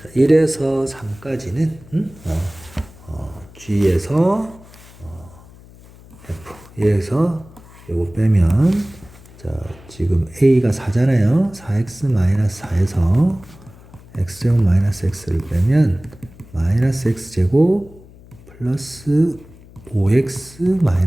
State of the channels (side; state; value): left; noise; hum, 22 dB below the sound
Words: 1에서 3까지는 g에서 f 1에서 요거 빼면 자, 지금 a가 4잖아요. 4x 마이너스 4에서 x제곱 마이너스 x를 빼면 마이너스 x제곱 플러스 5x